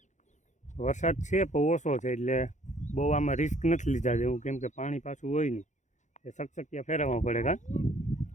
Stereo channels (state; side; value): late; right; 0.35 ms